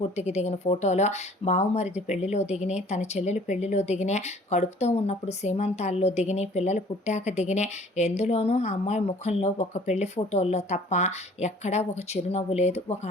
దిగిన ఫోటోలు, బావుమరిది పెళ్లిలో దిగినాయి, తన చెల్లెలు పెళ్లిలో దిగినాయి, కడుపుతో ఉన్నప్పుడు సీమంతాల్లో దిగినాయి, పిల్లలు పుట్టాక దిగినాయి. ఎందులోనూ ఆ అమ్మాయి ముఖంలో ఒక పెళ్లి ఫోటోల్లో తప్ప ఎక్కడా ఒక చిరునవ్వు లేదు, ఒక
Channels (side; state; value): both; normal; correlation 0.53